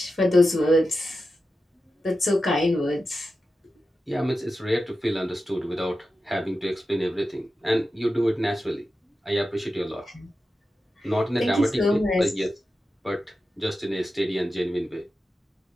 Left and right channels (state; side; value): normal; both; correlation 0.91